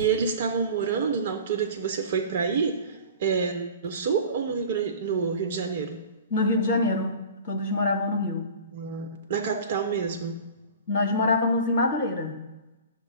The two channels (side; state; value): both; inverted; correlation -0.39